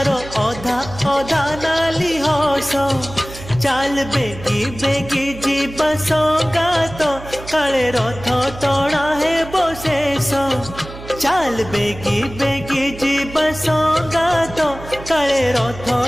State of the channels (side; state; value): right; noise; hum, 14 dB below the sound